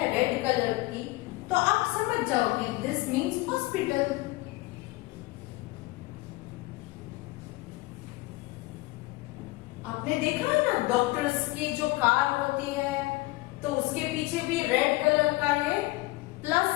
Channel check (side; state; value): right; quieter; 21.3 dB